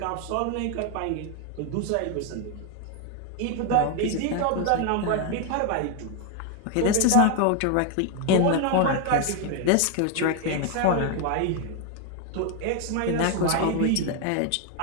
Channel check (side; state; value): both; different; correlation 0.01